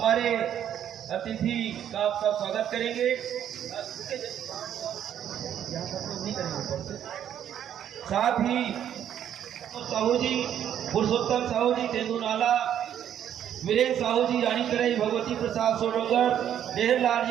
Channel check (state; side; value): quieter; left; 10.0 dB